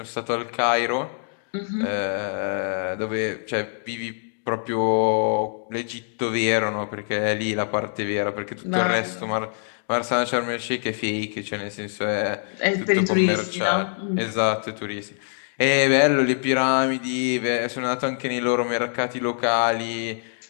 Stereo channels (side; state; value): right; silent; digital silence